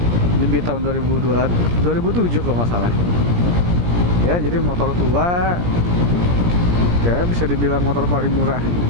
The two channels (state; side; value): late; left; 17 ms